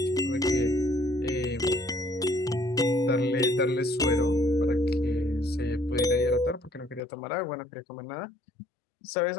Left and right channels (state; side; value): drops out; right; at 7.0 s